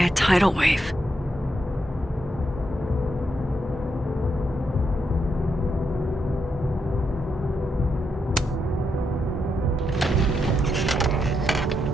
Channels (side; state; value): both; normal; correlation 0.82